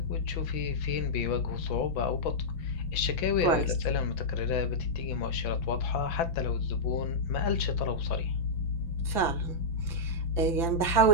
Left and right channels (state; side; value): late; right; 5.9 ms